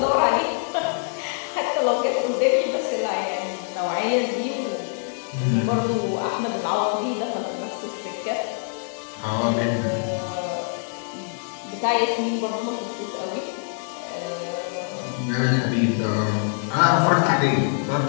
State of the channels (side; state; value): right; silent; 62 dB below the other